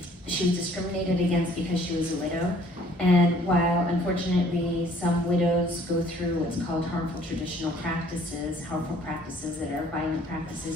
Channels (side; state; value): both; normal; correlation 0.57